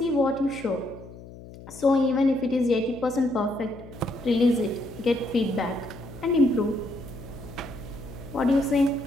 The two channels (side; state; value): left; noise; hum, 17 dB below the sound